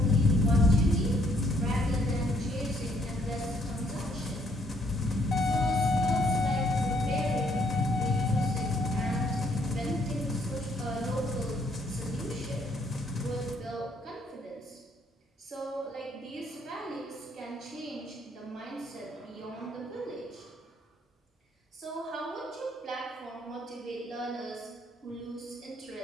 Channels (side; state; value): both; normal; correlation 0.68